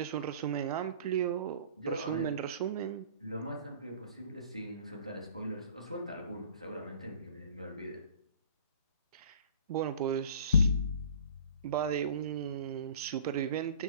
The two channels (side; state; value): both; inverted; correlation -0.45